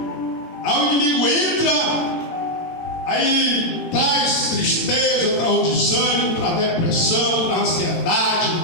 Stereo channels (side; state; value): right; late; 18 ms